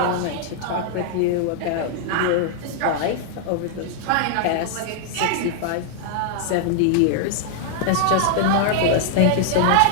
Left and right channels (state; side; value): different; both; correlation -0.01